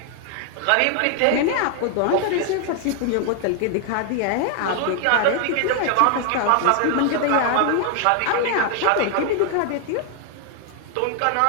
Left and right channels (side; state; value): both; different; correlation 0.00